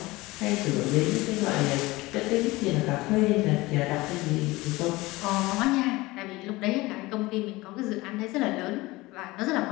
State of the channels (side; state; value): right; quieter; 20.7 dB